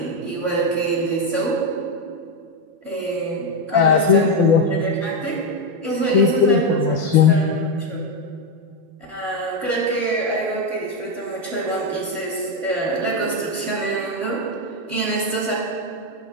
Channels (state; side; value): late; left; 12 ms